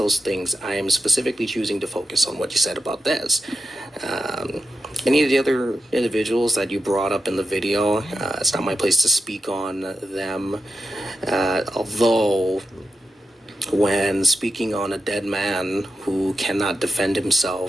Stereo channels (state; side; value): normal; both; correlation 0.89